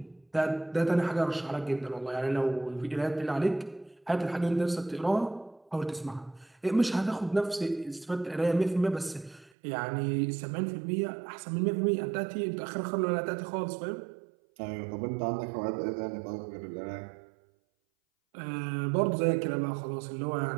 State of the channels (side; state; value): left; drops out; at 9.5 s